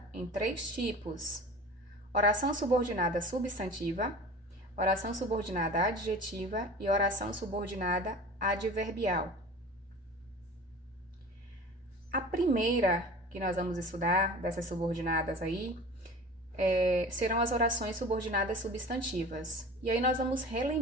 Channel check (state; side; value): normal; both; correlation 0.38